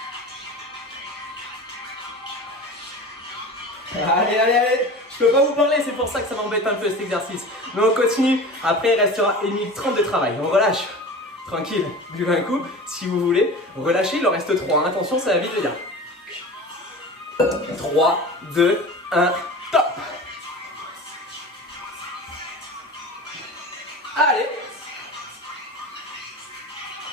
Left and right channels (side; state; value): both; normal; correlation 0.35